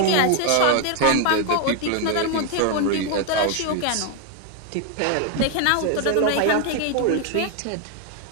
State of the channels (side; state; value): both; different; correlation 0.01